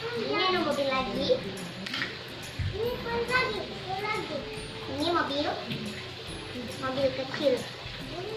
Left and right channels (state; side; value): identical; both; correlation 1.00